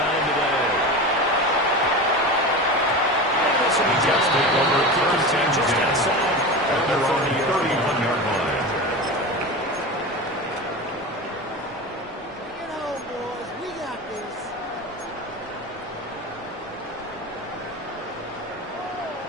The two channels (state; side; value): normal; both; correlation 0.27